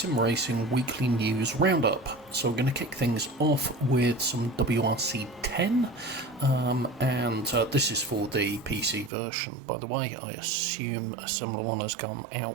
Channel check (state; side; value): drops out; left; at 9.1 s